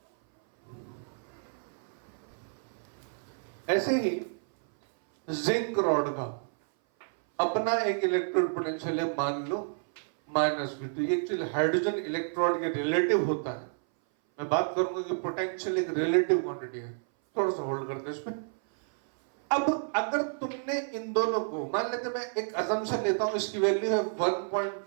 ऐसे ही जिंक रॉड का अपना एक इलेक्ट्रोड पोटेंशियल है, मान लो -V2। ये एक्चुअली हाइड्रोजन इलेक्ट्रोड के रिलेटिव होता है। मैं बात करूंगा कि पोटेंशियल एक रिलेटिव क्वांटिटी है, थोड़ा सा होल्ड करते हैं इसमें। अब अगर तुमने इन दोनों को, मान लेते मैं एक असम्पशन लेता हूं, इसकी वैल्यू है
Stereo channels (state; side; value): silent; left; 57 dB below the other